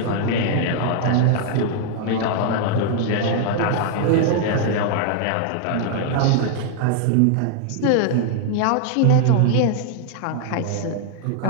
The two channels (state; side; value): different; both; correlation 0.00